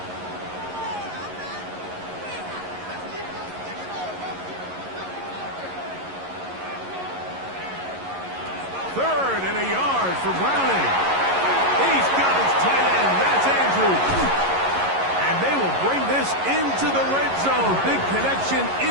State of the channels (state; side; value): late; left; 11 ms